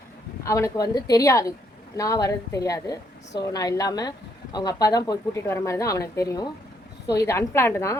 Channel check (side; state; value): both; normal; correlation 0.72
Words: அவனுக்கு வந்து தெரியாது, நான் வர்றது தெரியாது. ஸோ நான் இல்லாமல் அவங்க அப்பா தான் போய் கூட்டிகிட்டு வர மாதிரி தான் அவனுக்கு தெரியும். ஸோ இது அன்பிளான்டு தான்.